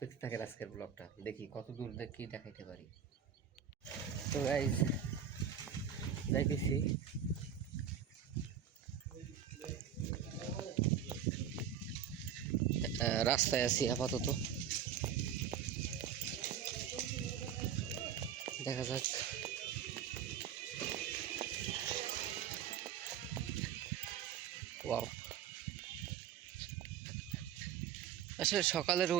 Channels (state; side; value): quieter; left; 8.6 dB